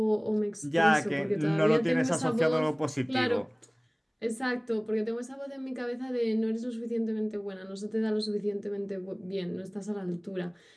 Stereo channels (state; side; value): identical; both; correlation 1.00